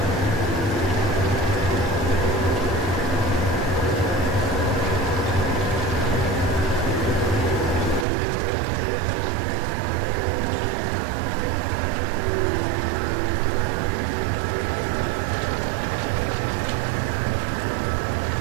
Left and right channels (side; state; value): left; drops out; at 8.1 s